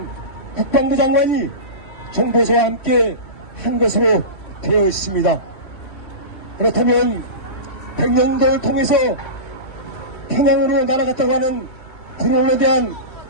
국방부 장관이 정보서와 함께 한 것으로 되어 있습니다. 그렇다면 백령도를 통해서 평양으로 날아갔다고 하는 드론에 대한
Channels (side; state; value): right; late; 3.1 ms